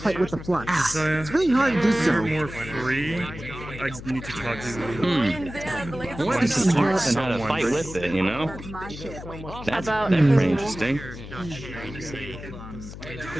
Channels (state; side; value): noise; left; hum, 12 dB below the sound